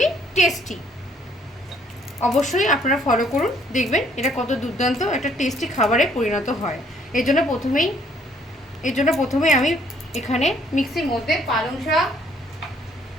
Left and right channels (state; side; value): normal; both; correlation 0.64